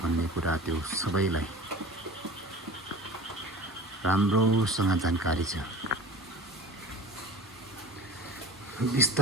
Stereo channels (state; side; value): normal; both; correlation 0.38